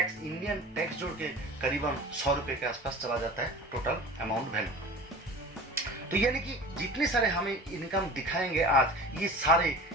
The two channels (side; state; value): both; normal; correlation 0.37